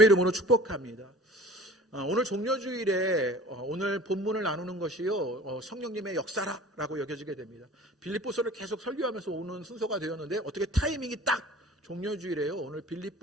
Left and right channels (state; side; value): normal; both; correlation 0.45